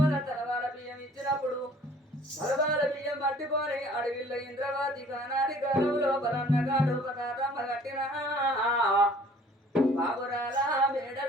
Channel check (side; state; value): both; normal; correlation 0.53